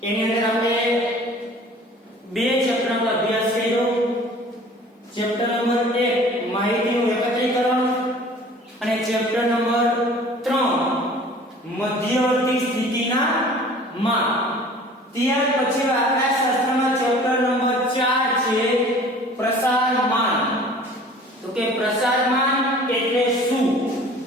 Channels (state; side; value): normal; both; correlation 0.47